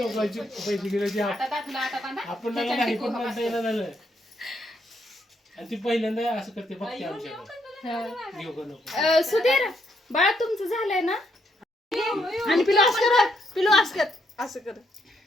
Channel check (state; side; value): normal; both; correlation 0.75